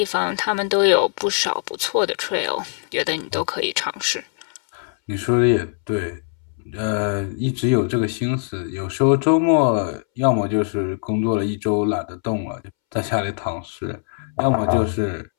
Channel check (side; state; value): right; silent; 64 dB below the other